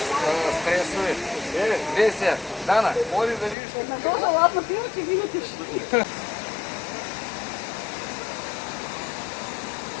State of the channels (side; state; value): right; drops out; at 3.6 s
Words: стресови. Веся, Дана, ходи да видиш. На този ладно пиво, че видите.